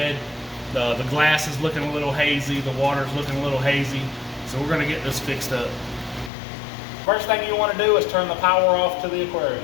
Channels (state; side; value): drops out; right; at 6.3 s